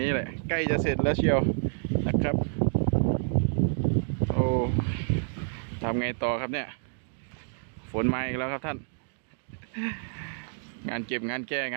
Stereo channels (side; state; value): left; silent; digital silence